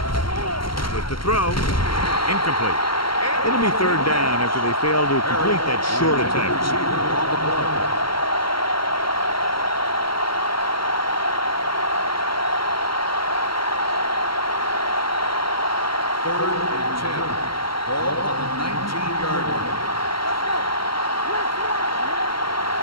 With the throw, incomplete. It'll be third down after they fail to complete that short attempt. Third and 10. Ball on the 19-yard line.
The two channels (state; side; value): late; right; 0.73 ms